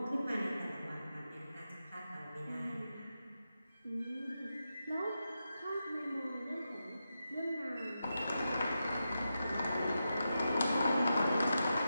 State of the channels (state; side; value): inverted; both; correlation -0.88